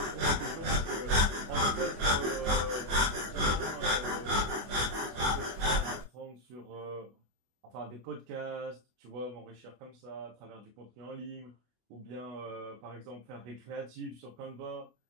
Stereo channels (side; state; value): left; late; 24 ms